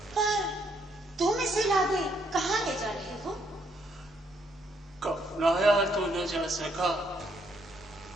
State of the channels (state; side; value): normal; both; correlation 0.72